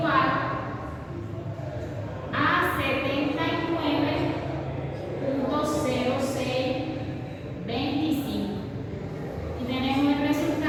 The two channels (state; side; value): identical; both; correlation 1.00